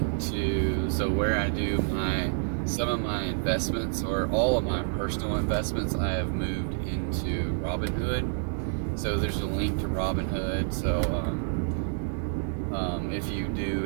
to where I do some of my investments, or all of my personal investments, I have moved into Robinhood. So there's a link to Robinhood. So if you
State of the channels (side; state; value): left; silent; digital silence